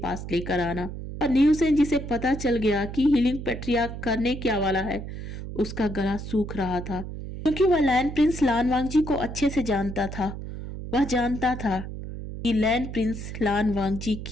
पास लेकर आना। और नी हुसैन जिसे पता चल गया कि हीलिंग पैट्रियार्क करने क्या वाला है, उसका गला सूख रहा था, क्योंकि वह लैंड प्रिंस लान वांगजी को अच्छे से जानता था। वह जानता था कि लैंड प्रिंस लान वांगजी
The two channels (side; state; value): right; noise; hum, 8 dB below the sound